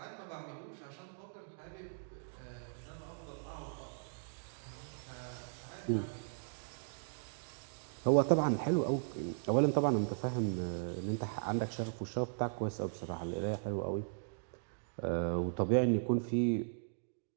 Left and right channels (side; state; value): left; silent; digital silence